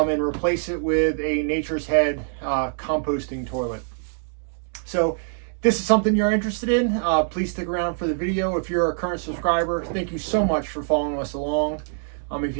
replace it with a Nature's Head composting toilet. So if this is something you're interested in, please stick around for the video. If you're a current subscriber, thank you so much for following us along. If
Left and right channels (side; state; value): left; silent; digital silence